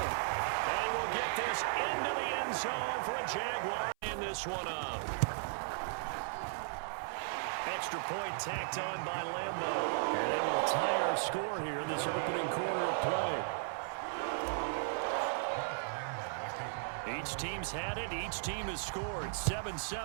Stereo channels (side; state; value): left; silent; 54 dB below the other